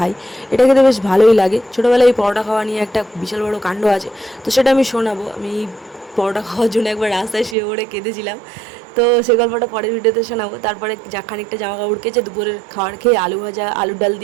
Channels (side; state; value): left; drops out; at 7.6 s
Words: এটা খেতে বেশ ভালোই লাগে। ছোটোবেলায় এই পরোটা খাওয়া নিয়ে একটা বিশাল বড় কাণ্ড আছে, তো সেটা আমি শোনাবো। আমি পরোটা খাওয়ার জন্য একবার রাস্তায় শুয়ে পড়ে কেঁদেছিলাম, তো সে গল্পটা পরের ভিডিওতে শোনাবো। তারপরে খানিকটা জামা কাপড় কেচে দুপুরের খাবার খেয়ে আলু ভাজা আলুর ডাল